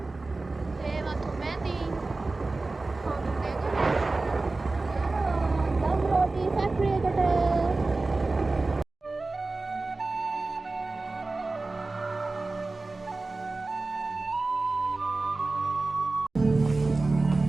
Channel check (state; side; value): quieter; left; 3.4 dB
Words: ඒවත් මැදි දම් රෝටි ෆැක්ටරි එකට